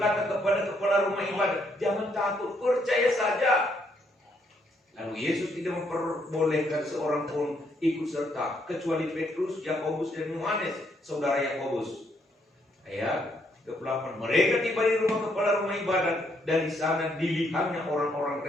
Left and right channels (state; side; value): normal; both; correlation 0.72